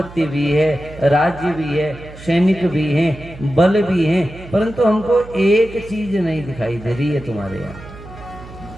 भी है, राज्य भी है, सैनिक भी हैं, बल भी हैं, परंतु हमको एक चीज नहीं दिखाई दे रही है तुम्हारे यहाँ।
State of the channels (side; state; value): right; noise; hum, 16 dB below the sound